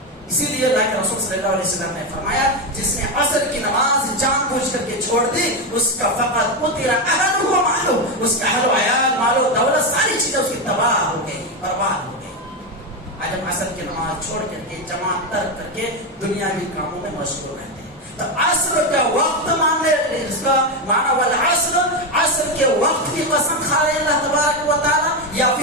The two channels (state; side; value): normal; both; correlation 0.11